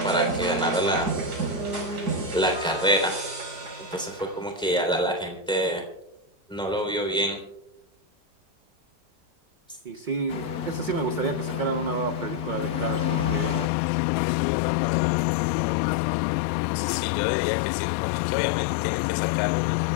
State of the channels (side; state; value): right; drops out; at 13.7 s